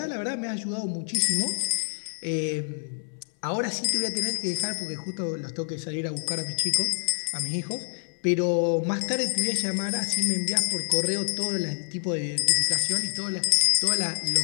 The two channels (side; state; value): right; silent; 60 dB below the other